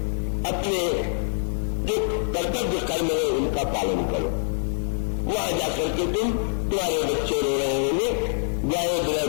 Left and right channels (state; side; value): silent; right; 60 dB below the other